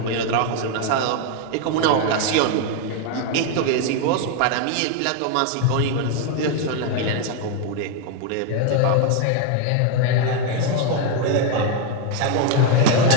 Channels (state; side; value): different; both; correlation 0.01